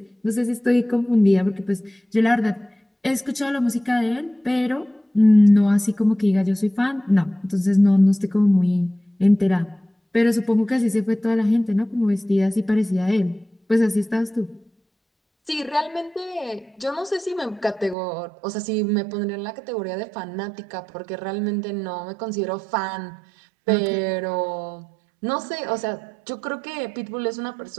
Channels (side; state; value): left; drops out; at 17.9 s